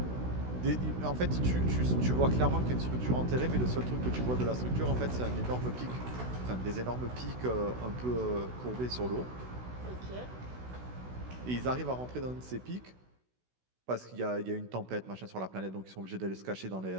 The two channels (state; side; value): late; left; 16 ms